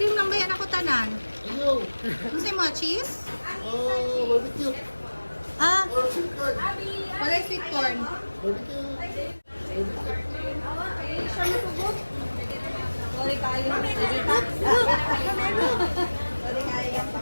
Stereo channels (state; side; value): inverted; both; correlation -1.00